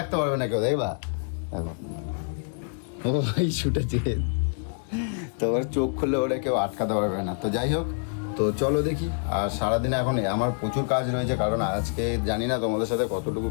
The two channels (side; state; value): right; silent; 60 dB below the other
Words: পারবে না কেউ, দেখবা। দেখো ও ভাই ছুটেছে, তো ওর চোখ খুললে ওরা কেউ আটকাতে পারবে না। তো যাই হোক, তো চলো দেখি। আর সারাদিনে এখন আমার প্রচুর কাজ রয়েছে, কারণ আজকে জানি না তোমাদের সাথে কতটুকু